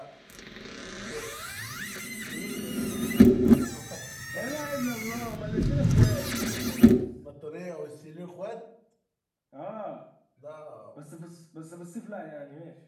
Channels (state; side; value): identical; both; correlation 1.00